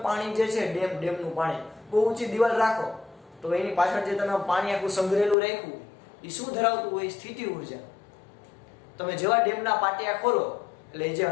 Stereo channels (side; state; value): right; drops out; at 5.4 s